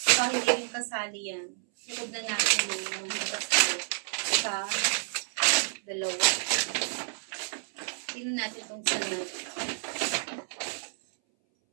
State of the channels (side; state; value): left; silent; 58 dB below the other